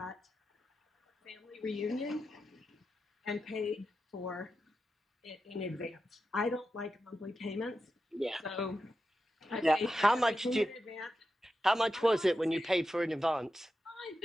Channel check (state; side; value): normal; both; correlation 0.90